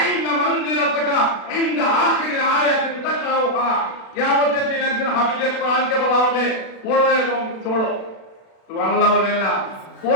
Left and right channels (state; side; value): late; right; 36 ms